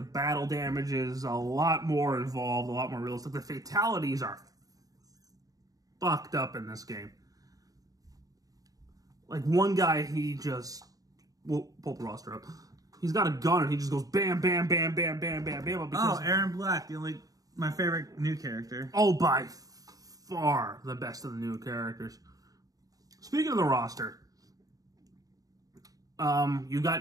battle damage is a lot more involved, a lot more realistic. The fatalities are fucked up in this game. Like, one guy, he just... We'll pull the roster up. He's got a gun, and he just goes bam, bam, bam, bam, bam, bam, bam. Aaron Black, my favorite new character. Oh, by far the best of the new characters. Speaking of the roster, you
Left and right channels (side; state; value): left; late; 0.18 ms